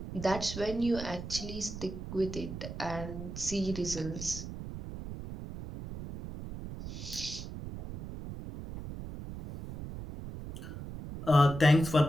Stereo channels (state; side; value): noise; right; rumble, 9 dB below the sound